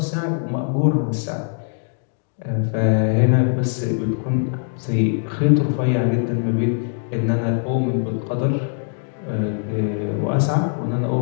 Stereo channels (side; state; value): right; silent; 64 dB below the other